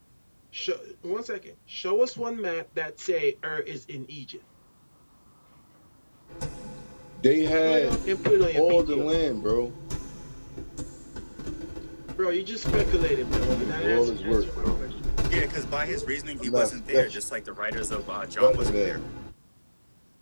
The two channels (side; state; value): both; inverted; correlation -1.00